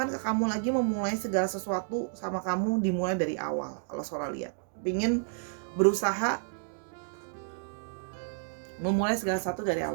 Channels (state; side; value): silent; left; digital silence